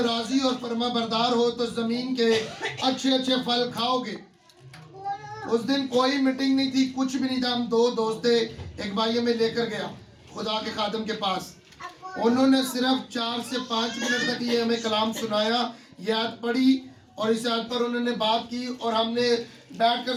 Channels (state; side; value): identical; both; correlation 1.00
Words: राजी और फरमा बरदार हो तो जमीन के अच्छे अच्छे फल खाओगे। उस दिन कोई मीटिंग नहीं थी, कुछ भी नहीं था, हम 2 दोस्त थे, एक भाई हमें लेकर गया खुदा के खातम के पास। उन्होंने सिर्फ 4 से 5 मिनट तक ये हमें कलाम सुनाया, ये आयत पढ़ी और इस आयत पर उन्होंने बात की और हमने